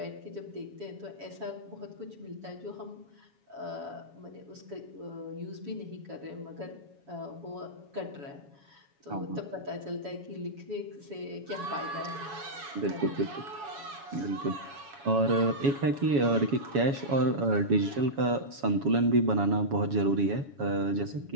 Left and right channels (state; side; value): late; left; 7.1 ms